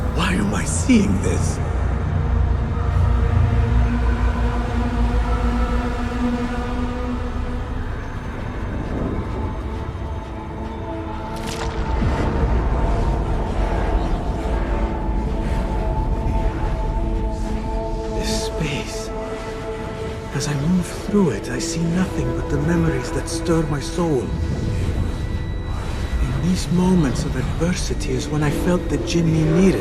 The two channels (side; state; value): both; identical; correlation 1.00